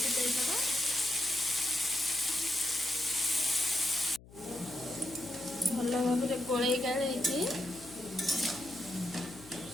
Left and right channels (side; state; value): left; noise; hum, 21 dB below the sound